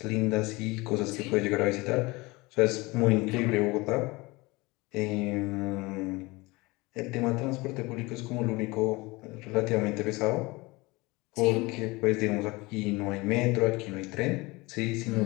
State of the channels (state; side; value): quieter; right; 23.3 dB